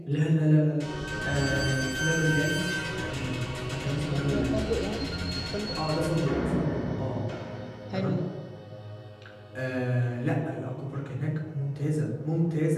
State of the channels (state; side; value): identical; both; correlation 1.00